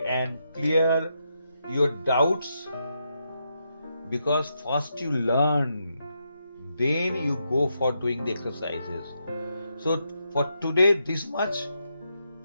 and clear your doubts, because first you learn, then you go for doing the exercises. So for today, this much.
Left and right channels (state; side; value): inverted; both; correlation -0.82